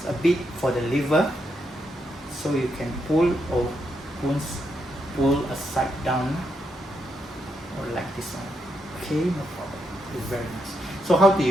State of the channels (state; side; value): normal; both; correlation 0.81